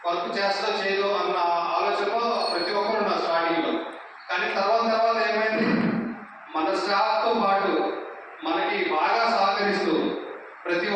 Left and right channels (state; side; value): identical; both; correlation 1.00